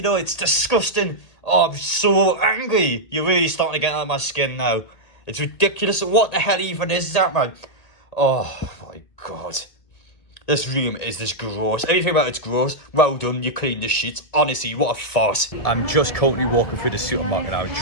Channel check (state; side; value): late; right; 1.9 ms